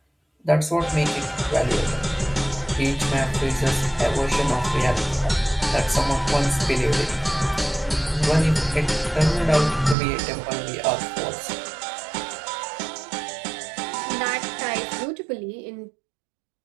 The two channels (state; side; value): drops out; left; at 10.0 s